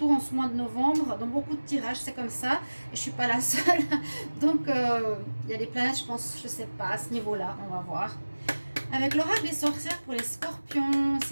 en ce mois de novembre. Dans beaucoup de tirages, c'est comme ça. Et je ne suis pas la seule. Donc, il y a des planètes, je pense, je ne sais pas, à ce niveau-là. On va voir. Avec l'oracle des sorcières pour les scorpions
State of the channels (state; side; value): inverted; both; correlation -1.00